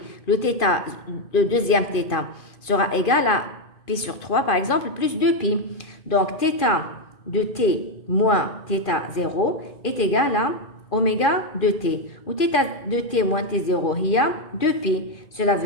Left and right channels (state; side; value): late; right; 2.5 ms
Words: le θ, le deuxième θ, sera égal à π sur 3, par exemple, plus 2π. Donc, θ de t moins θ0 est égal à oméga de t. Ou θ de t moins t0, il y a 2π. Cela